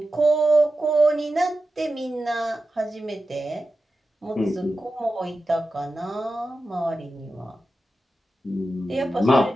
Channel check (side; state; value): both; normal; correlation 0.92